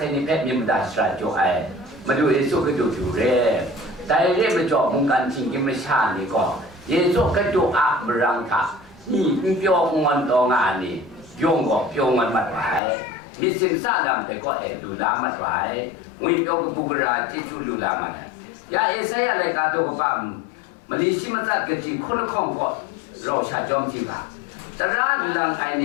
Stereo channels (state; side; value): drops out; right; at 12.8 s